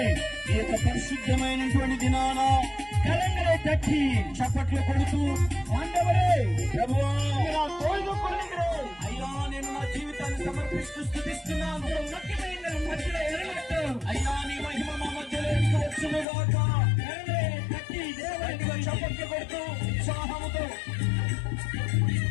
ఈ యొక్క పరిశుద్ధమైనటువంటి దినాన కలంగరే తట్టి చప్పట్లు కొడుతూ ఆండవరే ప్రభువా నా తోడు కొడుకురే అయ్యా నేను నా జీవితాన్ని సమర్పిస్తూ స్తుతిస్తున్నాను ముఖ్యమైన మధ్యలో ఎరగట్టు అయ్యా నీ మహిమ మా మధ్యలో వచ్చును గాక కలంగరే తట్టి దేవునికి చప్పట్లు కొడుతూ ఉత్సాహముతో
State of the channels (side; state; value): right; drops out; at 16.2 s